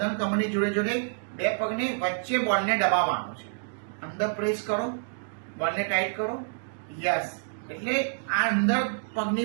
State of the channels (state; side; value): silent; left; digital silence